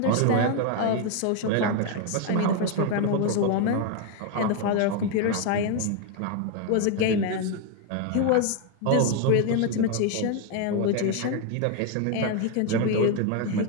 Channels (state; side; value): different; both; correlation 0.01